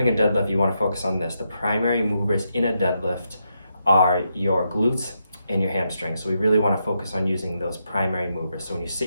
a deadlift, you want to focus on this. The primary movers in a deadlift are your glutes and your hamstrings. So we really want to focus on using those primary movers. So when you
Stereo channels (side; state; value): both; inverted; correlation -0.82